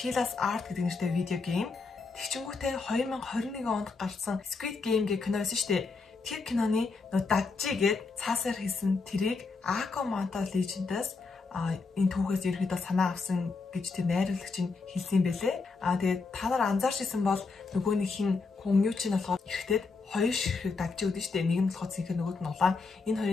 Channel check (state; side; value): quieter; right; 4.3 dB